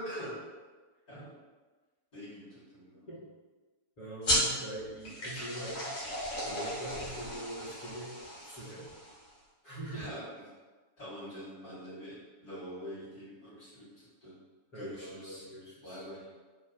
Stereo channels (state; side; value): late; right; 7.1 ms